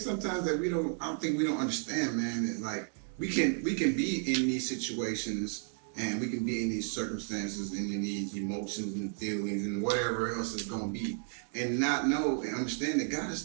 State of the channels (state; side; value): silent; left; 56 dB below the other